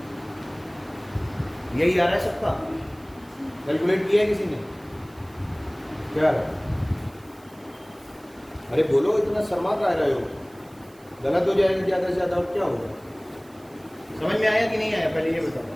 यही आ रहा है सबका, कैलकुलेट किया है किसी ने, क्या आ रहा है? अरे बोलो, इतना शर्मा का रहे हो, गलत हो जाएगा ज़्यादा से ज़्यादा और क्या होगा। समझ में आया कि नहीं आया पहले ये बताओ।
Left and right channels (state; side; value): noise; right; hiss, 28 dB below the sound